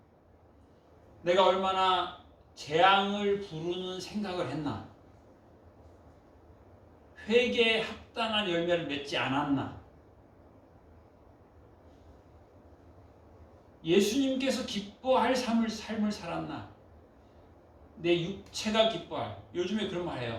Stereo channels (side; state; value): both; identical; correlation 1.00